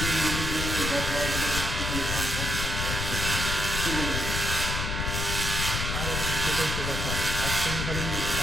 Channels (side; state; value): left; noise; rumble, 2 dB below the sound